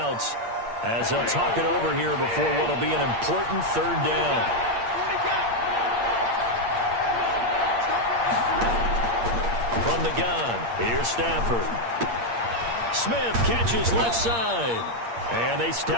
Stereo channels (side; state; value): left; late; 8.6 ms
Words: as they'll talk it over here before what will be an important 3rd down. From the gun, here's Stafford. Smith catches left side. And they